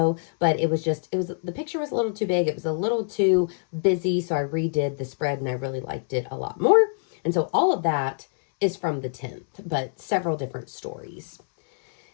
but the picture was a little too big. It was a little too busy. So I redid the spread and I really liked it a lot more. And so all of that is from the 10th, but several different stories.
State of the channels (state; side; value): silent; right; 62 dB below the other